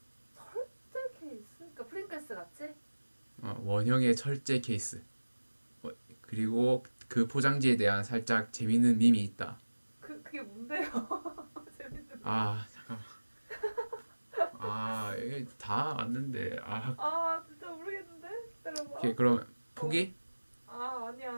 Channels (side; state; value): both; inverted; correlation -1.00